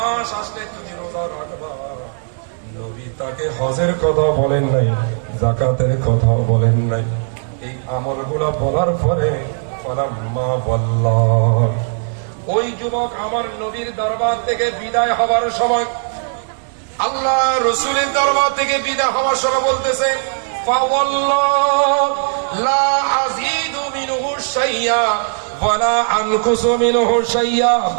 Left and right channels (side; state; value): left; silent; digital silence